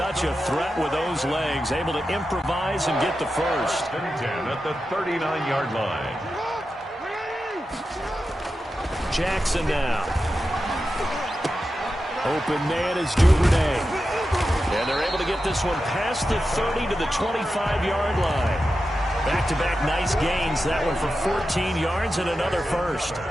a threat with those legs, able to improvise and get the first. And 10 at the 39-yard line. Jackson now. Open man is Duvernay. And they're able to get this one past the 30 to the 25-yard line. Back-to-back nice gains. That one for 14 yards and another first.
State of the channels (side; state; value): both; normal; correlation 0.91